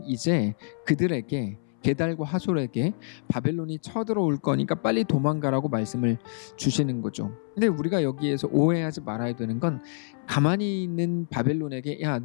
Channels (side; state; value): right; silent; 60 dB below the other